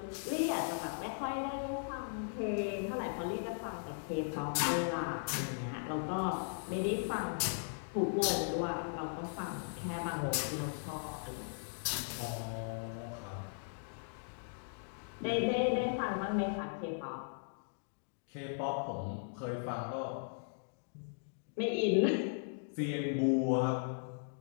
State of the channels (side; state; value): right; silent; digital silence